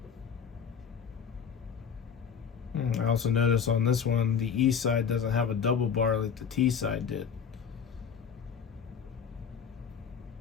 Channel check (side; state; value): right; quieter; 7.2 dB